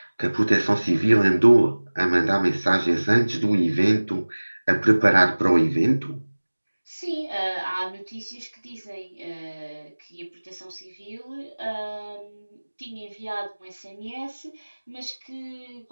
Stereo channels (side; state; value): both; inverted; correlation -1.00